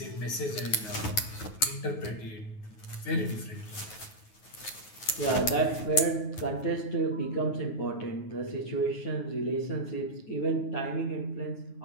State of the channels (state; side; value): late; right; 9.4 ms